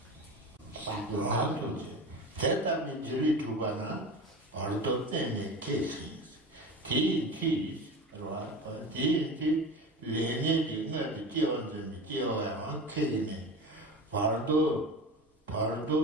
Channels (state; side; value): normal; both; correlation 0.30